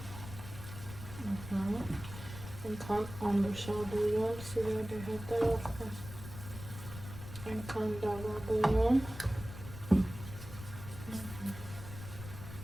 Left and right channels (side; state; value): left; noise; rumble, 12 dB below the sound